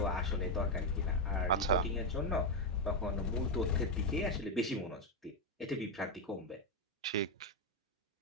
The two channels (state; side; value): normal; both; correlation 0.05